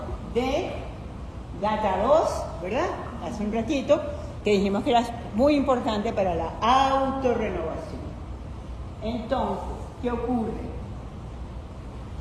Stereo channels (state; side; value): identical; both; correlation 1.00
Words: de GATA2, ¿verdad? Hace un ratito, que dijimos que era muy importante para la autorrenovación. Entonces, ¿qué ocurre?